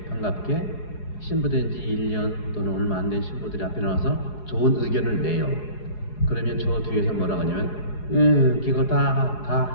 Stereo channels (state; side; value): late; right; 4.8 ms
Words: 반갑게 신부된 지 1년 또는 얼마 안 된 신부들이 앞에 나와서 좋은 의견을 내요. 그러면 저 뒤에서 뭐라고 하냐면 그거